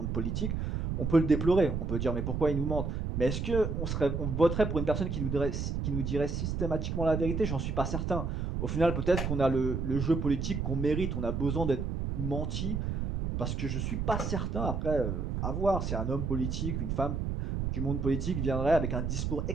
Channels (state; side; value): noise; right; rumble, 2 dB below the sound